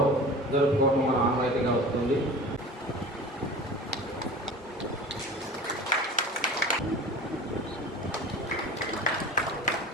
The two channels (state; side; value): normal; both; correlation 0.37